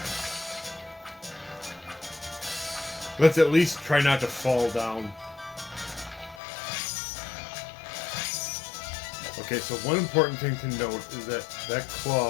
Let's at least try not to fall down. Okay, so one important thing to note is that that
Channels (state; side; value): drops out; right; at 6.4 s